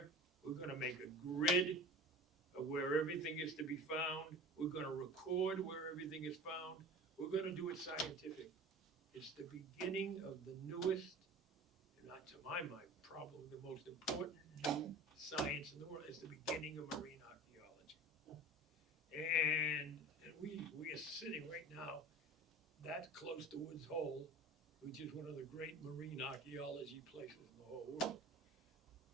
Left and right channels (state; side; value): normal; both; correlation 0.37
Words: we're gonna make a grid of where everything is to be found. We're gonna record where everything is found. We're gonna do it scientific. It's the beginning of the newest, and not to my mind, probably the most important new science in the world. It's the beginning of marine archaeology. And we are sitting right now that close to Woods Hole, which is one of the great marine archaeology places in the whole world.